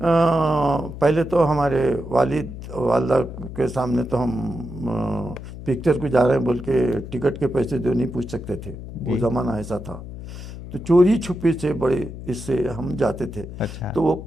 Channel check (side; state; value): left; noise; hum, 11 dB below the sound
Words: पहले तो हमारे वालिद वालदा के सामने तो हम पिक्चर को जा रहे हैं बोल के टिकट के पैसे जो नहीं पूछ सकते थे, वो ज़माना ऐसा था। तो चोरी छुपे से बड़े इससे हम जाते थे। अच्छा तो वो